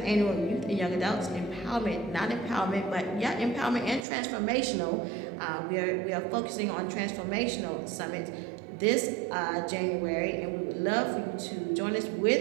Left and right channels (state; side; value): drops out; left; at 4.0 s